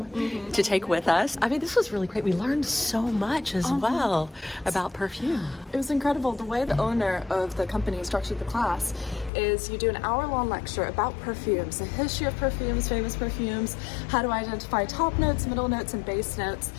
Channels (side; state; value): right; drops out; at 9.3 s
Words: to take with us. I mean, this was really great. We learned so much as well about perfume. It was incredible. The way the owner of the company structured the class is you do an hour-long lecture about perfumes, the history of perfumes, famous perfumes, how to identify top notes, middle notes, and base notes.